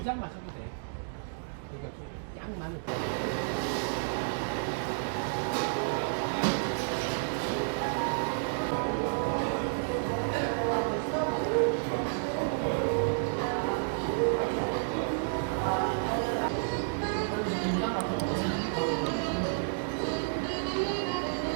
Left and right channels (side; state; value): left; silent; digital silence